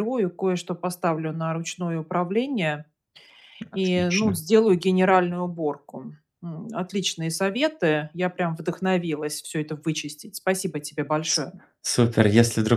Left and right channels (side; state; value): both; identical; correlation 1.00